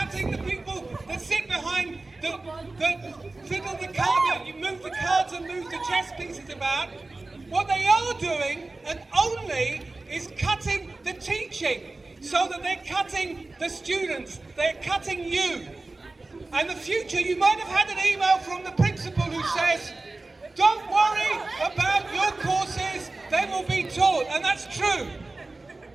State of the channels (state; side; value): quieter; left; 3.2 dB